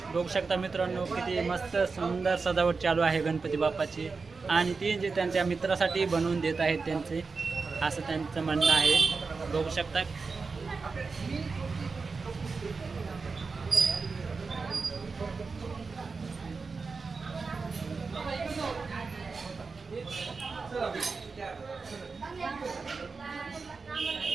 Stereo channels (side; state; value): left; quieter; 4.5 dB